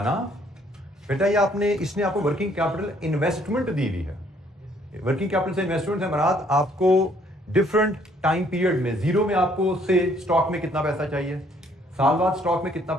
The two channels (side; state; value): both; normal; correlation 0.64